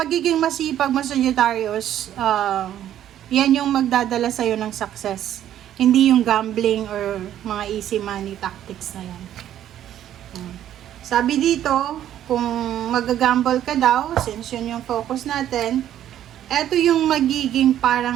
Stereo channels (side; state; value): left; quieter; 11.4 dB